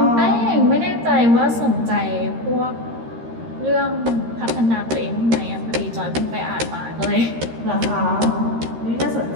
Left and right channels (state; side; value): late; left; 13 ms